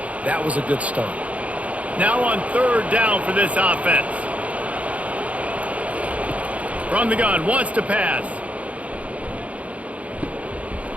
That was a good start. Now on third down for this offense. From the gun, wants to pass.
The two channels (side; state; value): left; late; 0.066 ms